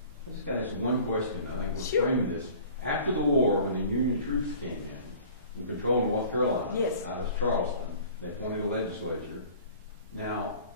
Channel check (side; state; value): both; inverted; correlation -0.47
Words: I just got this one question. I think we'll Sure. frame this. After the war, when the Union troops came in and controlled North Carolina, Yes. out of Charleston, they appointed a legislature. Now,